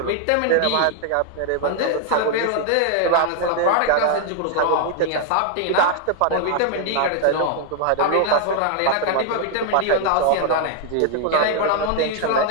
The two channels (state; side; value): different; both; correlation 0.00